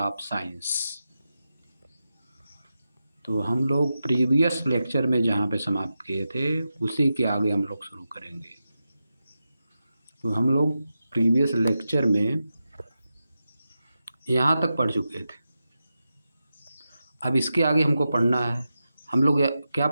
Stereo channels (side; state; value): both; inverted; correlation -0.90